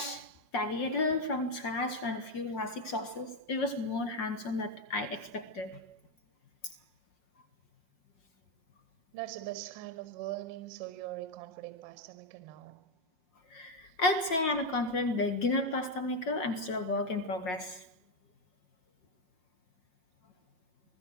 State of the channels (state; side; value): late; right; 6.2 ms